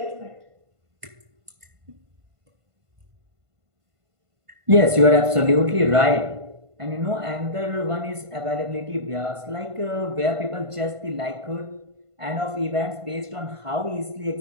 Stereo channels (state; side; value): late; left; 1.5 ms